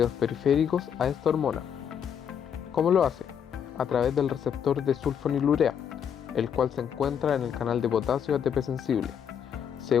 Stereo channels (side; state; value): right; quieter; 8.1 dB